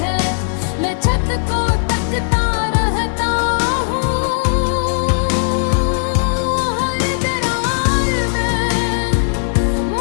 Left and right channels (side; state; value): right; silent; 68 dB below the other